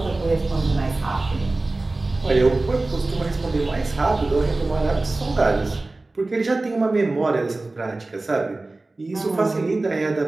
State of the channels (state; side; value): quieter; left; 3.1 dB